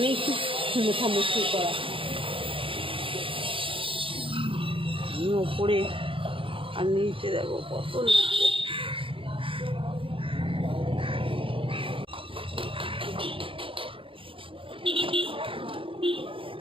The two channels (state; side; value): late; left; 0.26 ms